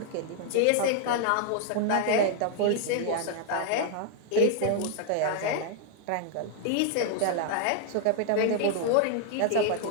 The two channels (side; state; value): both; different; correlation 0.00